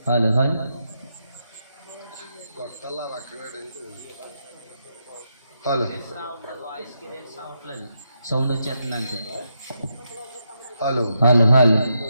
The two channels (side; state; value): both; inverted; correlation -0.82